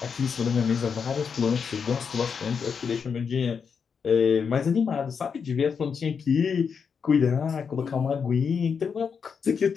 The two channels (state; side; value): quieter; right; 6.3 dB